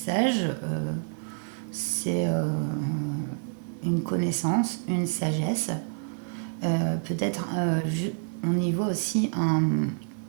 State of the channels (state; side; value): silent; left; 58 dB below the other